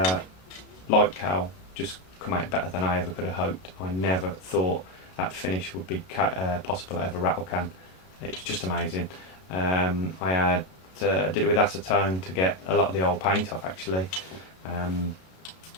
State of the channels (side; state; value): right; late; 32 ms